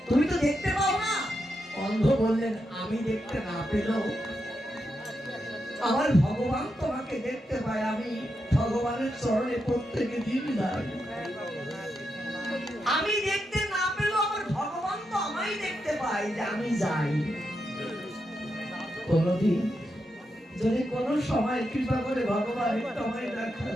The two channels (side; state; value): both; normal; correlation 0.85